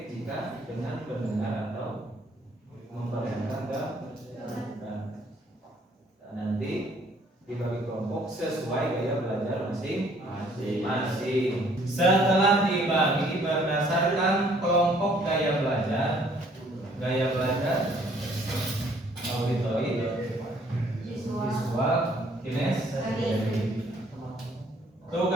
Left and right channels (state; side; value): normal; both; correlation 0.61